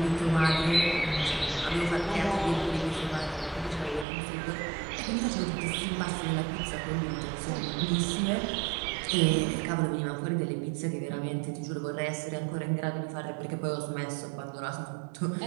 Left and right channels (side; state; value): left; drops out; at 4.0 s